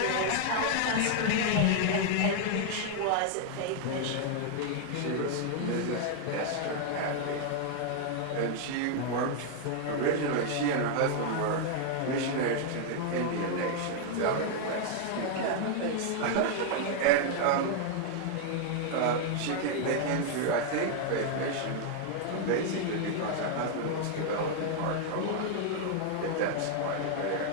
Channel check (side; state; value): both; different; correlation 0.00